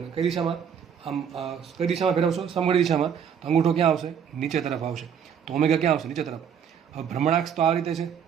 કઈ દિશામાં? આમ કઈ દિશામાં ફેરવશો? સમઘડી દિશામાં. તો અંગૂઠો ક્યાં આવશે? નીચે તરફ આવશે. તો ઓમેગા ક્યાં આવશે? નીચે તરફ. હવે ભ્રમણાક્ષ તો આ રીતે છે.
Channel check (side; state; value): left; quieter; 7.9 dB